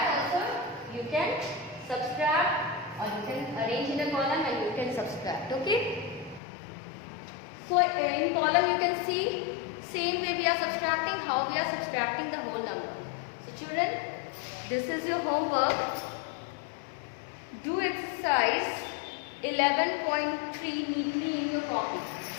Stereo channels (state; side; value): drops out; right; at 6.4 s